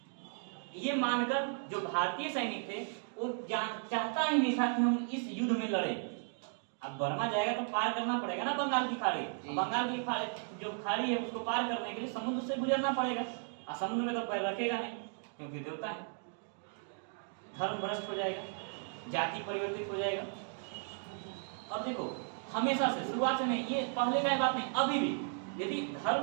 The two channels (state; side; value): silent; left; 54 dB below the other